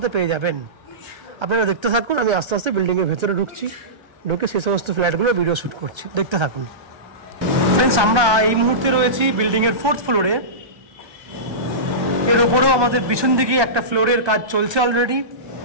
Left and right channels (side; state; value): left; late; 1.2 ms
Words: পেয়ে যাবেন। আপনারা দেখতে থাকুন, আমি আস্তে আস্তে বিল্ডিংয়ের ভেতরে ঢুকছি, ঢুকে সেই সমস্ত ফ্ল্যাটগুলো ভিডিও শ্যুট করছি, দেখতে থাকুন। ফ্রেন্ডস আমরা এই মুহূর্তে রয়েছি বিল্ডিংয়ের 4th ফ্লোরে। এর উপরেও আমাদের পিছন দিকে একটা ফ্লোরের কাজ চলছে অলরেডি,